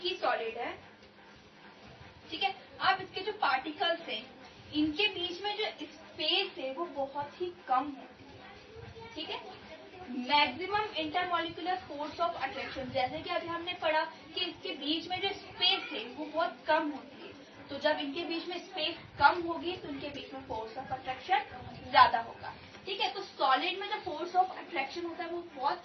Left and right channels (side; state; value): both; identical; correlation 1.00